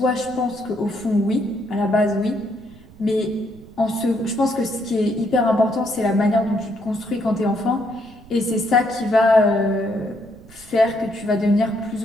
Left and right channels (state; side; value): noise; right; rumble, 22 dB below the sound